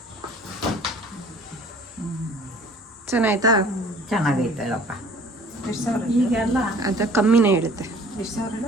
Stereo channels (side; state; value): both; normal; correlation 0.51